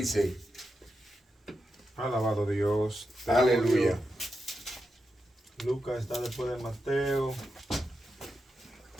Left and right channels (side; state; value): both; normal; correlation 0.88